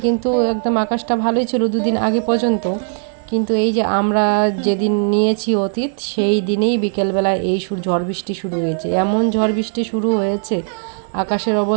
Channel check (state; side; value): silent; left; 59 dB below the other